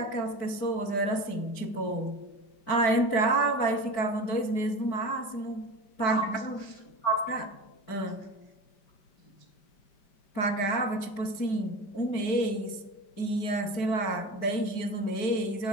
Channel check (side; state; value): right; late; 5.1 ms